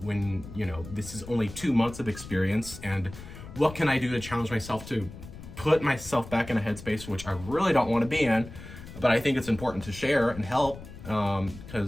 when, you know, this is only 2 months of experience, and what can I do to challenge myself to put myself back in a headspace which I really don't want to be in, but I think it's important to share and help,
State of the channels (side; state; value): left; noise; rumble, 14 dB below the sound